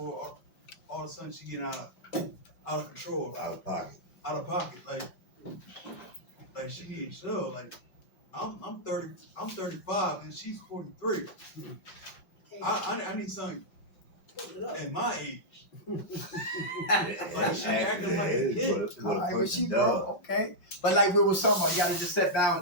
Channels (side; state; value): right; late; 5.5 ms